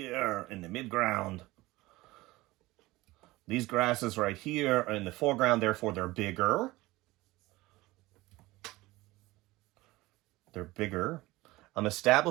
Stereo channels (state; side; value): quieter; left; 19.5 dB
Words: in the midground. These grasses right here are in the foreground, therefore they're bigger. They're bigger. I'm